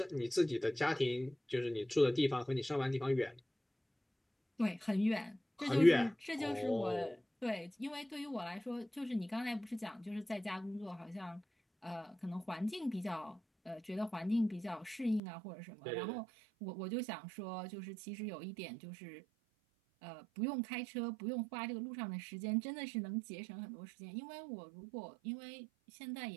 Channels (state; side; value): drops out; left; at 15.2 s